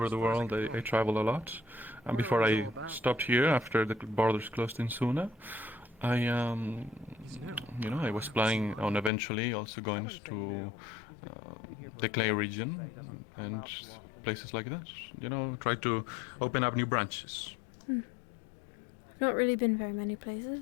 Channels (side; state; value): right; drops out; at 9.1 s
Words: the world, I travel a lot. And before I stopped here, after the borders closed in Suna, I was planning on eventually also going to the Clay region and places like that. You know, try to open up new branches. I've not really been very many